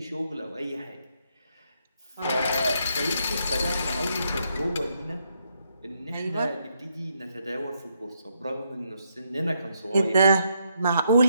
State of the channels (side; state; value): both; inverted; correlation -0.77